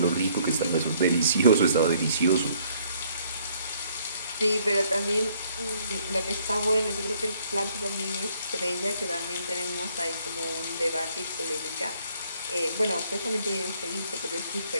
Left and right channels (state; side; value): inverted; both; correlation -0.64